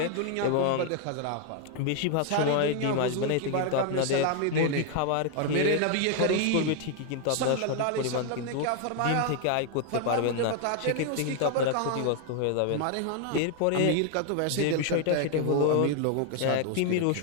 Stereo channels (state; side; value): different; both; correlation 0.00